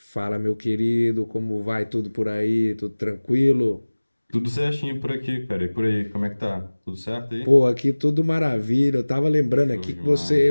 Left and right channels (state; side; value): inverted; both; correlation -1.00